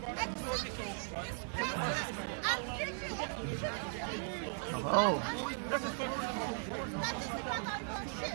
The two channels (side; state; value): left; silent; 53 dB below the other